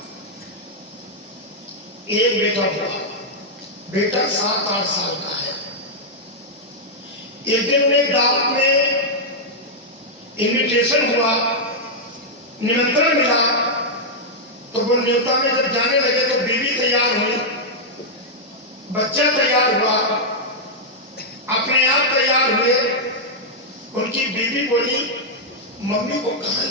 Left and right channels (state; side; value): normal; both; correlation -0.05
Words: एक बेटा हुआ। बेटा 7-8 साल का है। एक दिन उन्हें दावत में इनविटेशन हुआ, निमंत्रण मिला, तो वो न्योता में जब जाने लगे तो बीवी तैयार हुई, बच्चा तैयार हुआ, अपने आप तैयार हुए। उनकी बीवी बोली, मम्मी को कहां